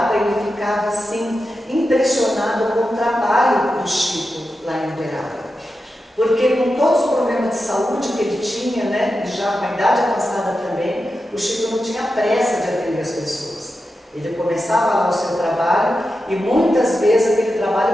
ele ficava assim, impressionado com o trabalho do Chico lá em Uberaba. Porque com todos os problemas de saúde que ele tinha, né, e já com a idade avançada também, o Chico não tinha pressa de atender as pessoas. Ele começava lá o seu trabalho e muitas vezes aquele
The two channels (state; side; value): normal; both; correlation 0.90